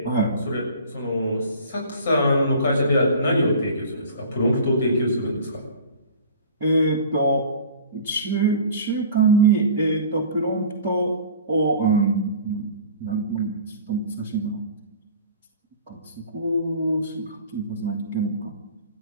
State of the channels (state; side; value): inverted; both; correlation -0.43